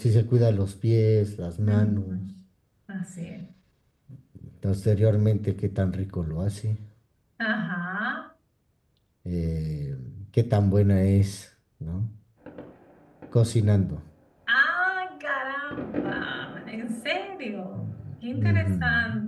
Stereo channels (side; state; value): both; identical; correlation 1.00